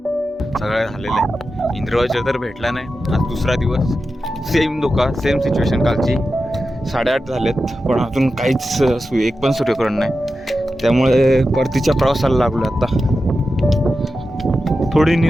सगळं झालेलं आहे. इंद्रवाजा तर भेटला नाही. आज दुसरा दिवस. सेम सिच्युएशन कालची. 8:30 झालेत पण अजून काहीच एक पण सूर्यकिरण नाही. त्यामुळे परतीच्या प्रवासाला लागलो आता. थोडी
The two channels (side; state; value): both; normal; correlation 0.91